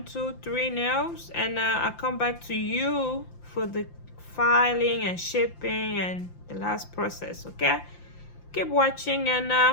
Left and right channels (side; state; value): right; late; 5.8 ms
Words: 2, 3 nails, and I'll come back to you for the filing and shipping and the last process. Okay, keep watching, and